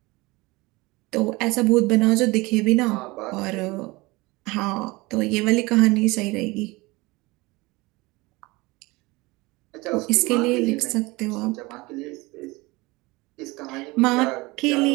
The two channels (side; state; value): left; quieter; 22.8 dB